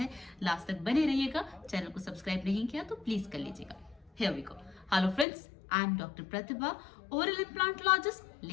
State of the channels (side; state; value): right; drops out; at 5.2 s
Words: लास्ट तक बने रहिएगा। चैनल को सब्सक्राइब नहीं किया तो प्लीज कर लीजिएगा। Here we go. Hello friends, I am Dr. Pratibha, oral implantologist,